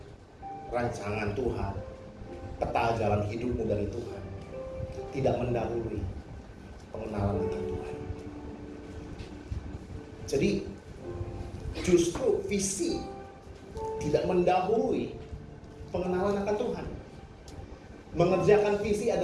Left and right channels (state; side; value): identical; both; correlation 1.00